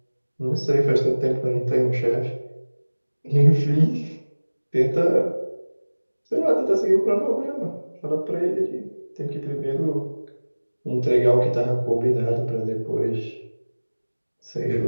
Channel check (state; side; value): inverted; both; correlation -1.00